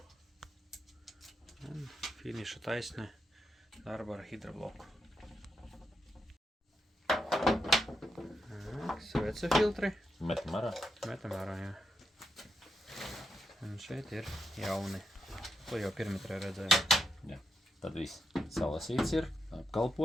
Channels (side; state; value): both; normal; correlation 0.83